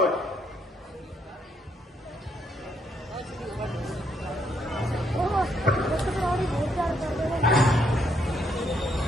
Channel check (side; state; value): both; normal; correlation 0.73